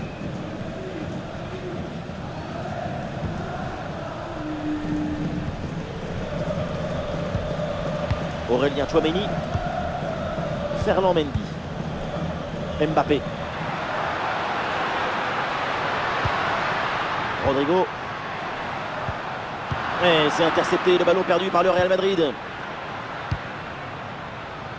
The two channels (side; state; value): both; identical; correlation 1.00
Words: Aurélien Tchouaméni. Ferland Mendy. Mbappé. Rodrigo. Et c'est intercepté, le ballon perdu par le Real Madrid.